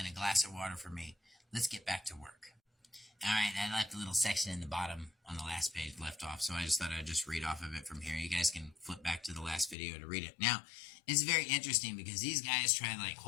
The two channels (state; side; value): drops out; right; at 9.8 s